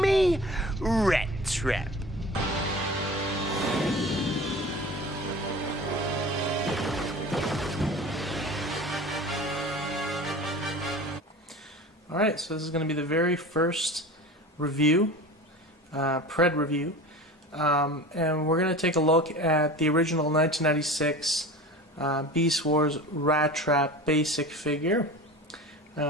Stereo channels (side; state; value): both; normal; correlation 0.36